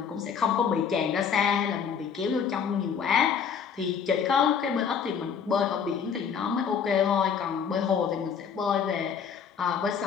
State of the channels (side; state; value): right; quieter; 7.0 dB